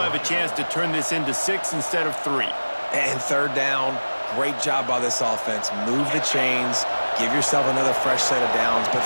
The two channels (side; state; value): both; inverted; correlation -1.00